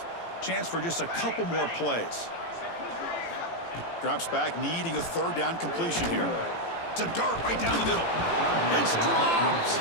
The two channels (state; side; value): late; right; 18 ms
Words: Chance for just a couple more plays. Drops back, needing a third down completion here. It's a dart right down the middle. It's dropped.